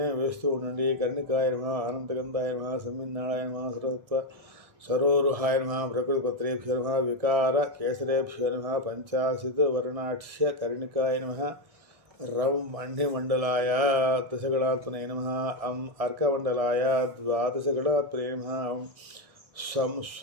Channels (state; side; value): late; left; 1.6 ms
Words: వేస్తూ ఉండండి. కర్ణికాయ నమః, అనంతగంధాయ నమః, సంవిన్నాళాయ నమః, సరోరుహాయ నమః, ప్రకృతిపత్రేభ్యో నమః, వికార కేసరేభ్యో నమః, పంచాశత్ వర్ణాక్ష్య కర్ణికాయ నమః, రం మణ్యమండలాయ దశగణాత్మనే నమః, అం అర్కమండలాయ ద్వాదశగణాత్మనే నమః, సం